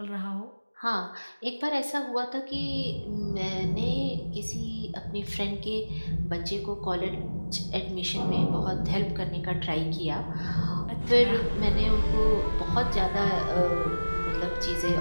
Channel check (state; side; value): inverted; both; correlation -1.00